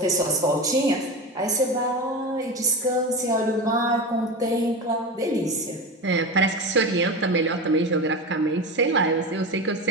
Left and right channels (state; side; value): normal; both; correlation 0.24